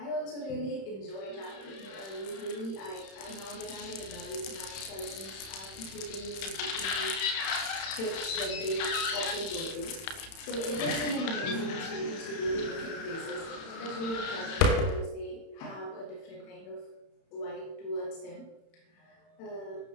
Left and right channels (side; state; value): right; late; 31 ms